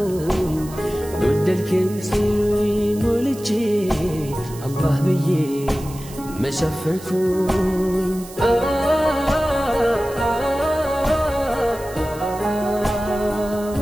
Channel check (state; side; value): noise; right; hiss, 18 dB below the sound